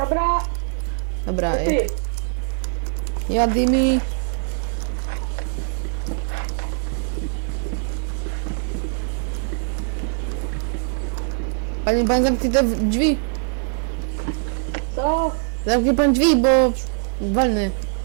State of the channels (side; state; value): left; silent; 61 dB below the other